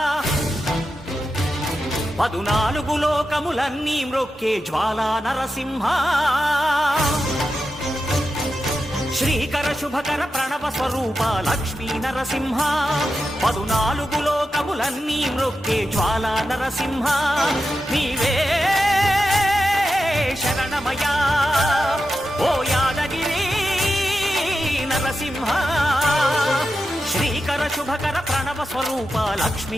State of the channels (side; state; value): both; normal; correlation 0.90